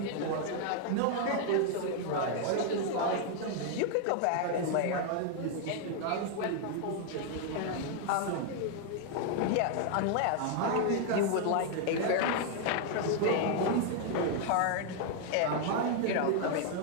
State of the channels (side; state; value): both; different; correlation 0.00